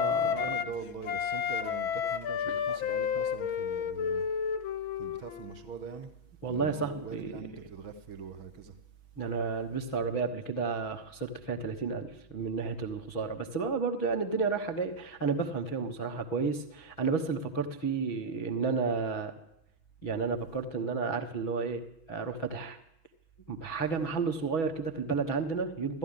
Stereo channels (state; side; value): late; right; 6.2 ms